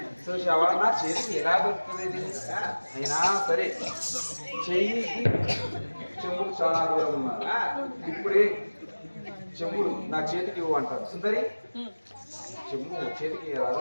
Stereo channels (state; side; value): inverted; both; correlation -1.00